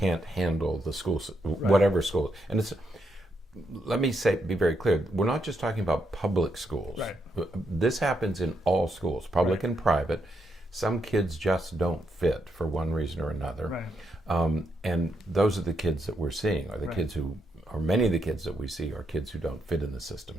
handle the schools, whatever school. And it's, let me be very clear, we're not just talking about public schools. This happens in all schools, public and private. Some kids just don't fit for one reason or another. And those are the kids that we're seeing, are the kids who, or many of the kids that we see are kids who don't fit in the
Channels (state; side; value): normal; both; correlation 0.80